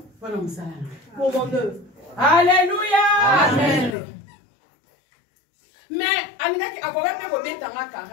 pour mon œuvre. Alléluia. Amen.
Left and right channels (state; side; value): drops out; right; at 4.0 s